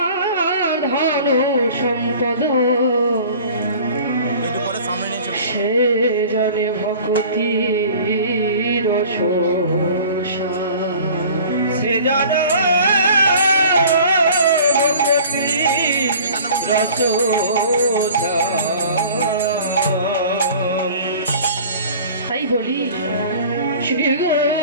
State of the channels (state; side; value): inverted; both; correlation -0.45